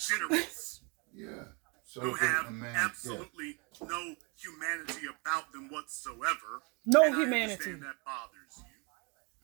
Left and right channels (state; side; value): quieter; left; 31.7 dB